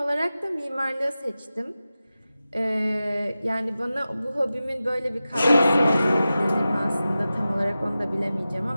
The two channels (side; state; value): both; inverted; correlation -0.94